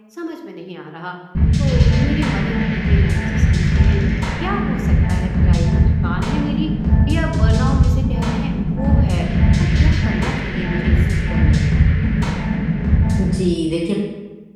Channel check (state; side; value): identical; both; correlation 1.00